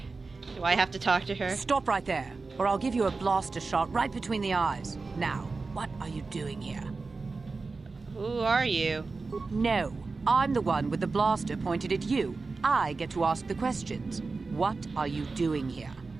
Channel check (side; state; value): left; quieter; 4.0 dB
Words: I have to talk to her? Stop right there, or I'll give you a blaster shot right between the eyes. Now, what are you doing here? Who are you? No, I'm the one with the blaster pointed at you. I get to ask the questions. What are you doing here?